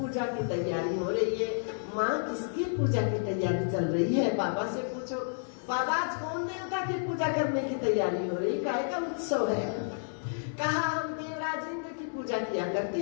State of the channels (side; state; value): right; silent; digital silence